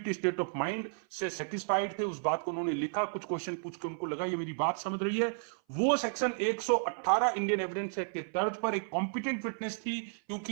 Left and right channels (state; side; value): silent; left; 56 dB below the other